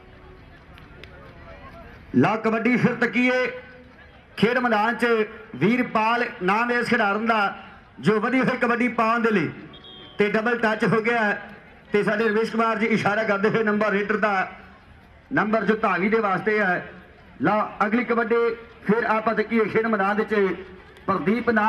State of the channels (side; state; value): both; identical; correlation 1.00